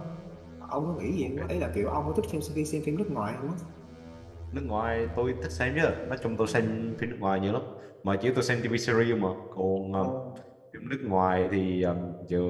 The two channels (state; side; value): identical; both; correlation 1.00